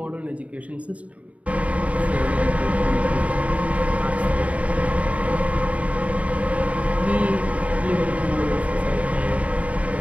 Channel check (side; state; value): left; late; 0.067 ms